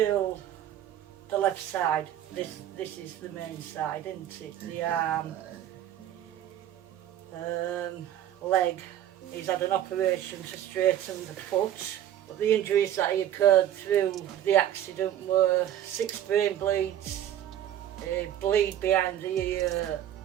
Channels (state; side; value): quieter; left; 11.4 dB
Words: The left side. This is the main side, isn't it? The arm, leg. He's had an operation to straighten the foot. But the injuries that he occurred through the accident were 6 brain bleeds, a bleed behind the ear